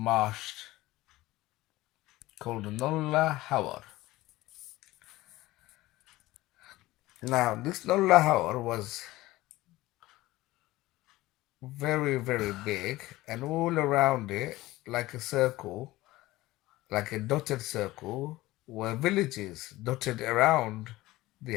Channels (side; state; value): right; quieter; 18.0 dB